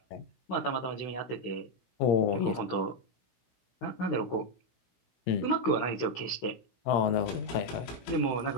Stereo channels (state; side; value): late; right; 16 ms